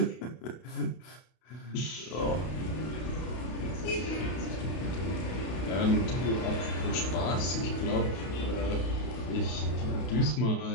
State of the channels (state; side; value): late; right; 32 ms